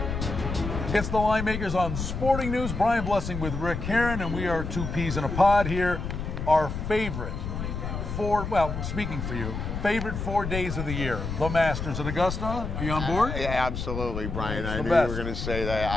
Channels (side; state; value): left; noise; rumble, 5 dB below the sound